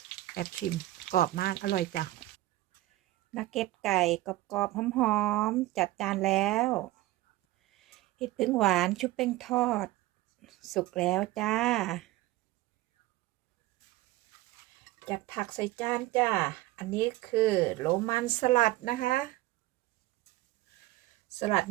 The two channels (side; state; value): left; quieter; 17.4 dB